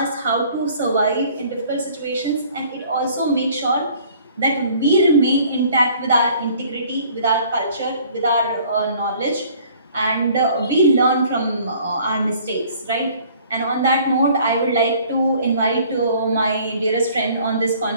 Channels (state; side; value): inverted; both; correlation -0.55